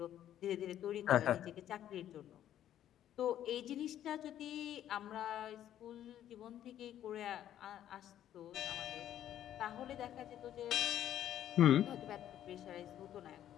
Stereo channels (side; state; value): right; quieter; 11.3 dB